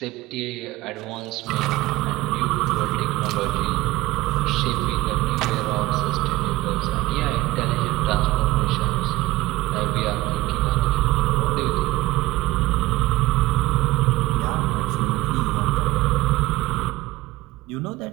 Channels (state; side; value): quieter; left; 18.1 dB